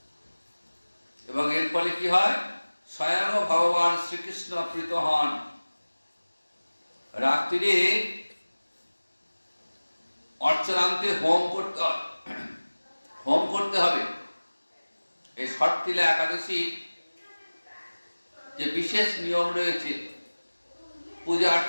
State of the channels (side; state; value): both; inverted; correlation -1.00